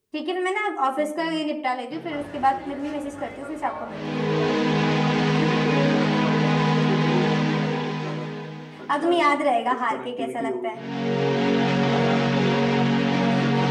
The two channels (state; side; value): identical; both; correlation 1.00